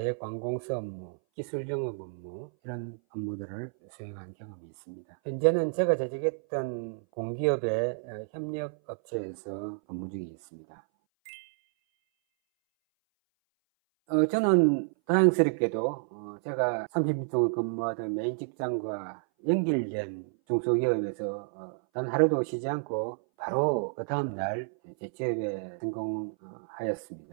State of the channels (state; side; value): silent; left; 58 dB below the other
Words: 업무, 기술영업 업무 이런 업무들을 수행한 경험이 있습니다. 현재는 제가 재직했던 공기업의 협력업체에서 근무 중에 있습니다. 저는 다행스럽게도 제가 30년 동안 근무하던 메인 직장과 연결된 중소기업에서 단 하루도 쉬지 않고 바로 그 다음날 재취업에